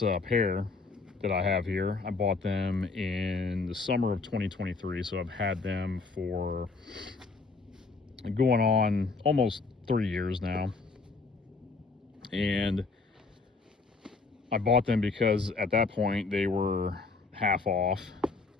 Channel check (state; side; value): quieter; right; 4.1 dB